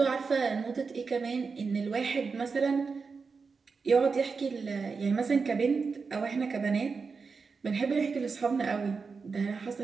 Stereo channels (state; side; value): quieter; left; 4.9 dB